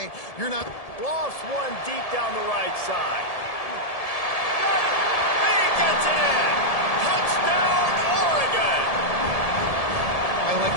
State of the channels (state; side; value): late; right; 1.7 ms